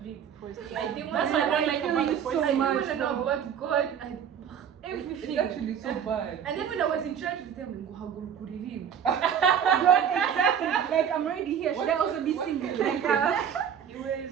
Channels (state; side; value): quieter; left; 8.3 dB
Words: it. Forced to I didn't That's want what I don't to like feel about you the so force. I didn't much, want to know though. about God and It's everything. actually so bad. And then when I was in church with them, we go kuririm. Exactly. Like I'm already here. Should I also be singing? Like